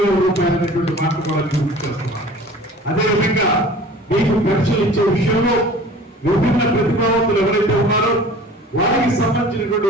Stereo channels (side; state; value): both; normal; correlation 0.44